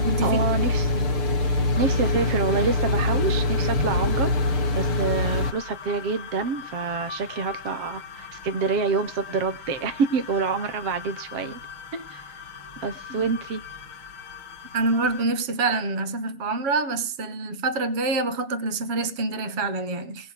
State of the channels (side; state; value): left; late; 7.2 ms